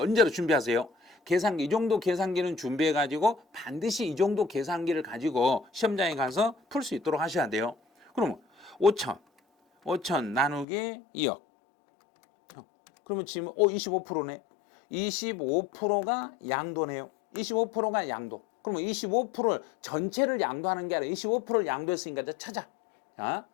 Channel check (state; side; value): drops out; right; at 10.7 s